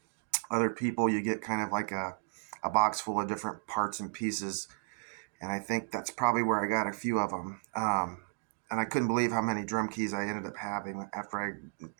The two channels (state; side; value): silent; left; digital silence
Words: other people, you get kind of like a box full of different parts and pieces, and I think that's probably where I got a few of them. And I couldn't believe how many drum keys I ended up having after